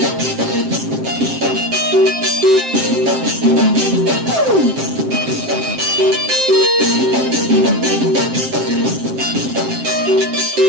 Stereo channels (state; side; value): late; left; 7.6 ms